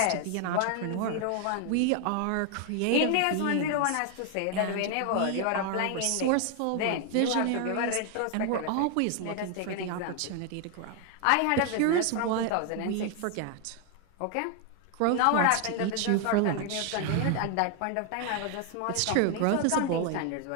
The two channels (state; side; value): different; both; correlation 0.00